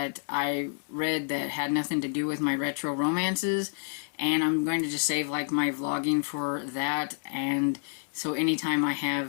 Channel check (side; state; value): right; silent; 59 dB below the other